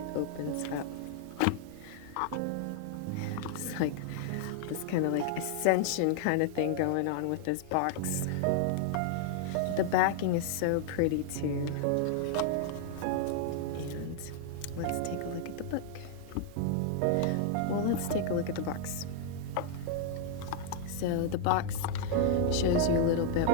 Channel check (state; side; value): different; both; correlation 0.00